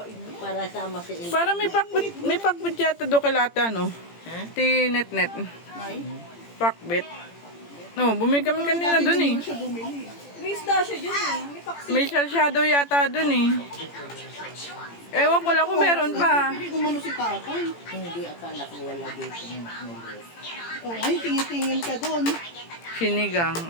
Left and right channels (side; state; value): right; late; 18 ms